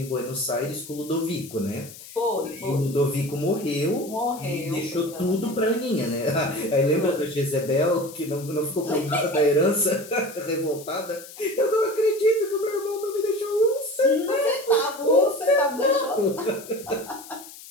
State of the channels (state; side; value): noise; left; hiss, 16 dB below the sound